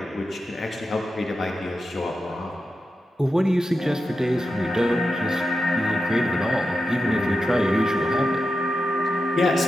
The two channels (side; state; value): both; normal; correlation 0.90